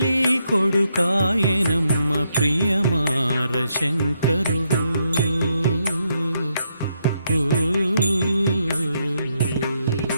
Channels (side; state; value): both; inverted; correlation -0.78